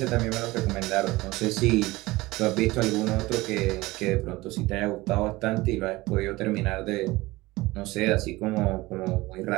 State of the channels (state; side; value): quieter; left; 20.3 dB